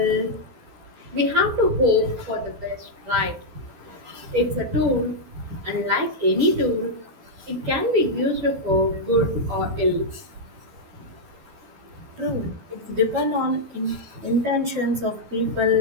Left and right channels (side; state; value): left; late; 12 ms